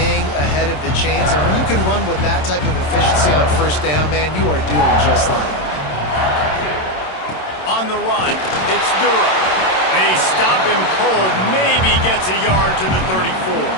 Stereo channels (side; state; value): right; late; 27 ms